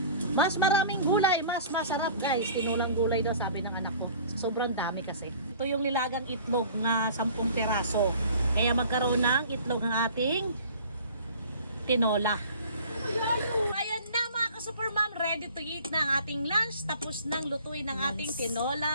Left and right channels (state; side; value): inverted; both; correlation -0.46